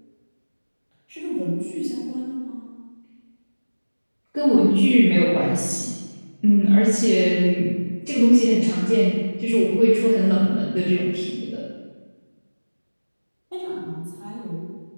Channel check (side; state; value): both; inverted; correlation -1.00